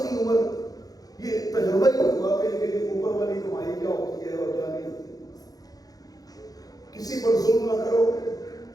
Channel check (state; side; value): late; right; 0.18 ms